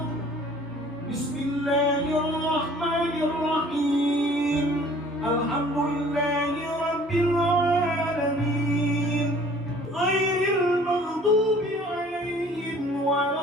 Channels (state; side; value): normal; both; correlation 0.52